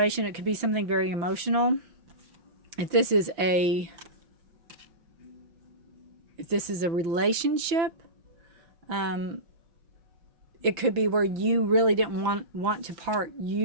It could be something very emotional. If this is a relationship, it could be where you really didn't want to part.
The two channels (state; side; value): late; left; 5.9 ms